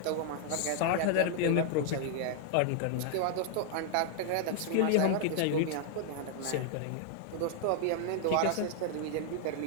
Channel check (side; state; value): both; different; correlation 0.00